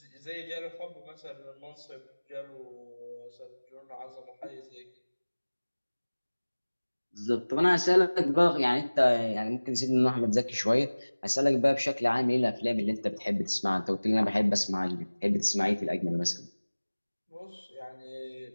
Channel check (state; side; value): inverted; both; correlation -1.00